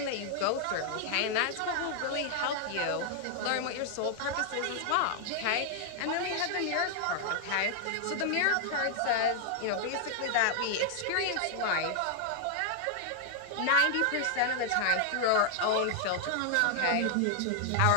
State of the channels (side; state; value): both; different; correlation 0.00